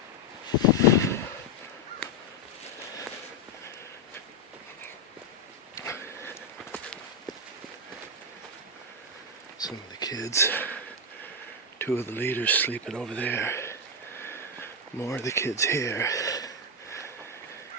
Some of the kids, 2 of the leaders sleeping over there, more of the kids here,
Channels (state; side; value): normal; both; correlation 0.04